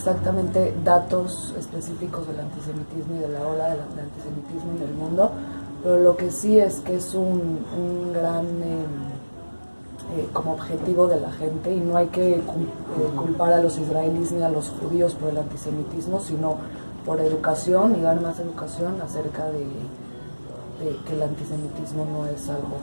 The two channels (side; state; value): both; inverted; correlation -1.00